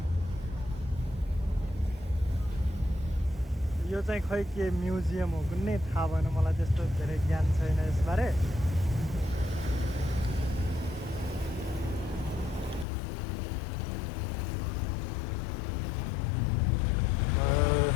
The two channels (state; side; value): drops out; right; at 12.9 s